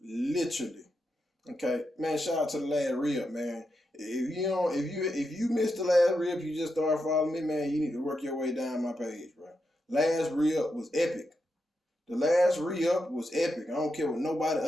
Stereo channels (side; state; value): both; normal; correlation 0.85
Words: literally. Okay. Man, shout out to the last rib, man. If you missed the last rib, you just started following me, man, you need to work your way down my page, bro. Last rib was epic. The last re-up was epic. I don't care what nobody